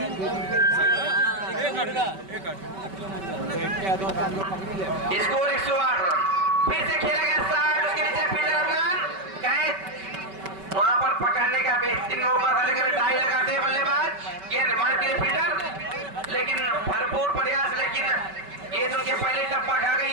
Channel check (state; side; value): late; left; 5.2 ms